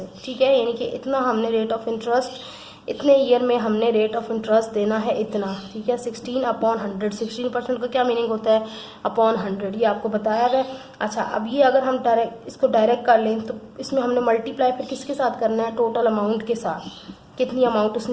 ठीक है, यानी कि इतना हमने रेट ऑफ इंटरेस्ट, इतने ईयर में हमने रेट ऑफ इंटरेस्ट देना है इतना, ठीक है। 16/100, 16% का क्या मीनिंग होता है, अपॉन 100, ये आपको बताया है। अच्छा, अब ये अगर हम इसको डायरेक्ट कर लें तो इसमें हमने मल्टीप्लाई फिर किसके साथ करना है, टोटल अमाउंट के साथ, कितनी अमाउंट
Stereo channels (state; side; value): identical; both; correlation 1.00